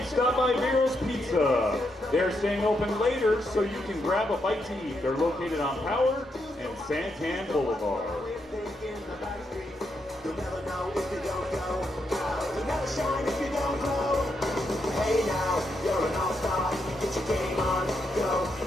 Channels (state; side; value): normal; both; correlation 0.81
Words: stop by Vero's Pizza. They're staying open later, so you can grab a bite to eat. They're located on Power and Santan Boulevard. Hey now, you're an all-star. Get your game on, go